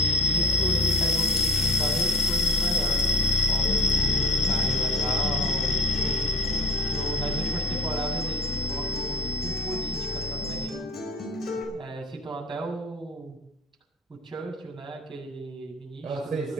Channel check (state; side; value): normal; both; correlation 0.41